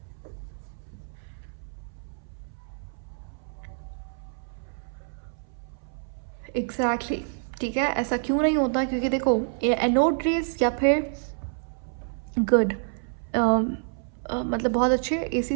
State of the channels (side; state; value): left; silent; 60 dB below the other